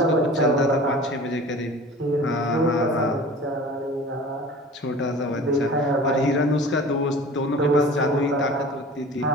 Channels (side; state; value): both; normal; correlation 0.41